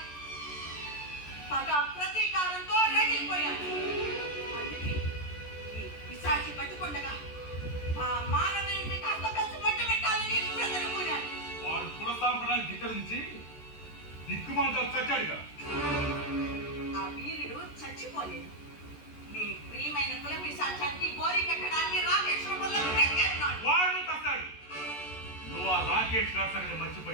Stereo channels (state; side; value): late; right; 14 ms